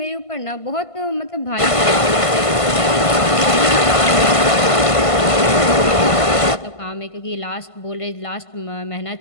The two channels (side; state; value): right; late; 1.5 ms